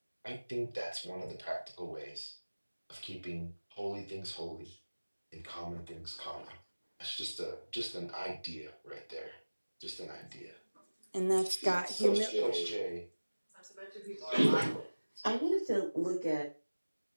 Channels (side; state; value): both; inverted; correlation -1.00